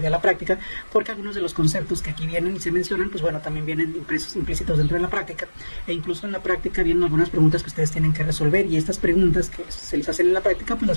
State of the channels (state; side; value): inverted; both; correlation -1.00